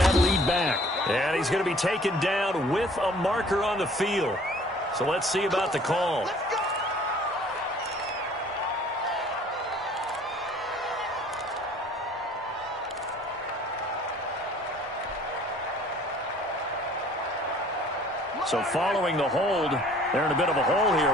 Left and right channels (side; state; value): both; normal; correlation 0.53